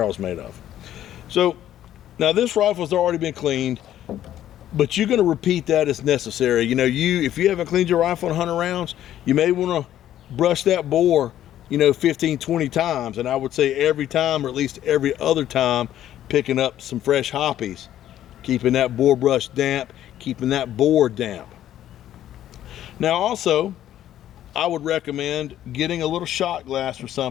is made of. So Now this rifle's already been cleaned, but you're going to repeat that as necessary. You know, if you haven't cleaned your rifle in 100 rounds, you may want to brush that bore, you know, 15, 20 times. And I would say every time, or at least every other time, picking up some fresh hoppies, keeping that bore brush damp, keeping that bore damp. Now also, I would recommend getting a little shot glass or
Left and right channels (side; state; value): right; quieter; 12.0 dB